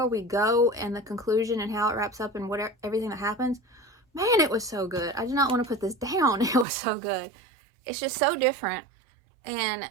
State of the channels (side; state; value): left; drops out; at 6.7 s